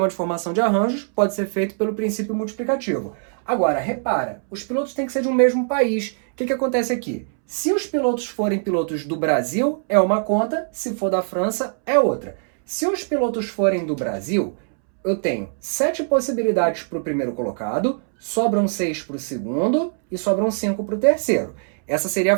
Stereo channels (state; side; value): silent; left; 64 dB below the other